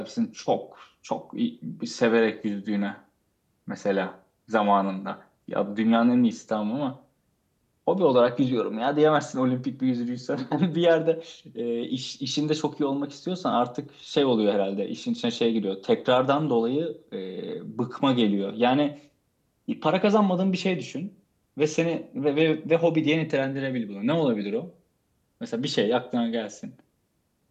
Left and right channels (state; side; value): identical; both; correlation 1.00